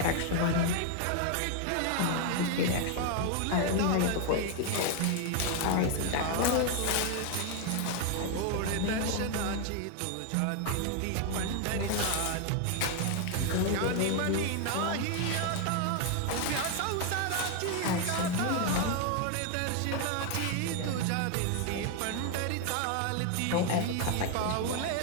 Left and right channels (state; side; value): different; both; correlation 0.01